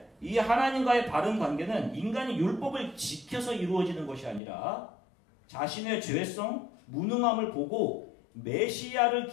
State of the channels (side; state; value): right; drops out; at 4.4 s